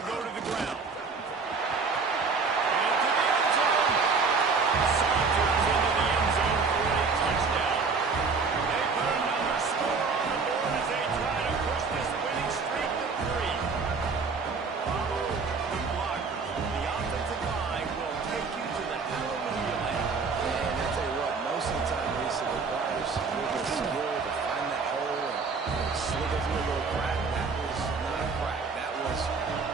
go to the ground. Into the end zone. Saunters into the end zone for a touchdown. They put another score on the board as they try to push this winning streak to 3. Follow the blockers. The offensive line will take you to the hallelujah land. And I tell you what, most of the time, Lisa, requires a little bit of skill to find that hole and slip it through a little crack. That was not a crack. That was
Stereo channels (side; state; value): left; quieter; 4.7 dB